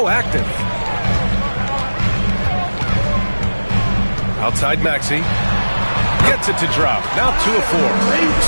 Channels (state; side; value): inverted; both; correlation -1.00